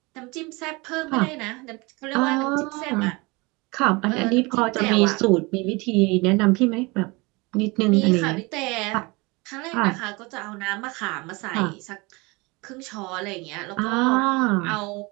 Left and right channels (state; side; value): quieter; left; 25.6 dB